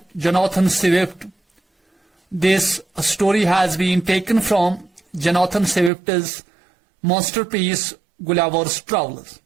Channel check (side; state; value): left; drops out; at 5.9 s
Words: Jonathan Swift. This story has been taken from Jonathan Swift's masterpiece Gulliver's Travels.